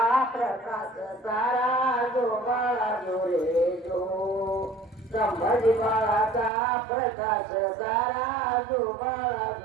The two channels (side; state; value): left; drops out; at 6.5 s